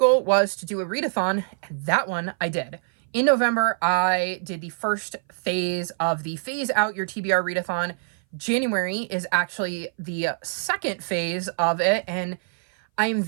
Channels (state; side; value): silent; left; 59 dB below the other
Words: was to do a readathon, and that one I did. In November, I did the first phase of the Phase Out Your TBR readathon. January is actually the second phase of it, and I am